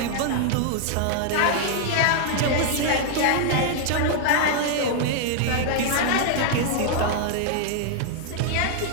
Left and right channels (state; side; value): different; both; correlation -0.01